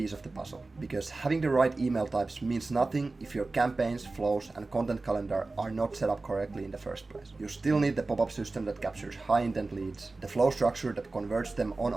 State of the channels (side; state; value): left; quieter; 3.4 dB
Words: of the puzzle. Because having the right email types means nothing if your campaigns, flows, and content calendar are not set up correctly in the first place. You still need the pop-up system that captures high intent leads, the flow structure that converts them on